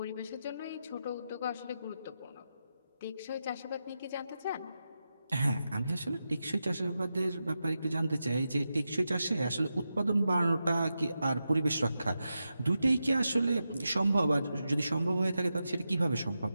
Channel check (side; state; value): both; inverted; correlation -0.89